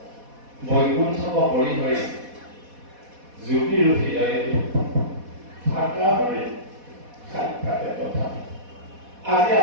বৈকুণ্ঠক পৰিহৰি জ্যোতিৰ হৃদয়ে থাকা হৰি সাক্ষাতে তথা। আজি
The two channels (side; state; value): left; late; 4.1 ms